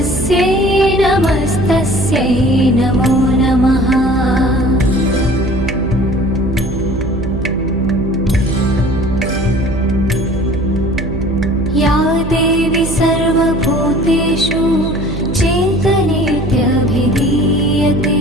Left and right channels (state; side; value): noise; right; hum, 7 dB below the sound